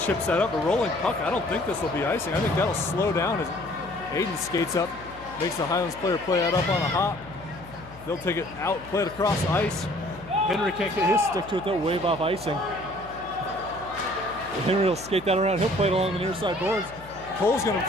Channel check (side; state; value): left; noise; hum, 19 dB below the sound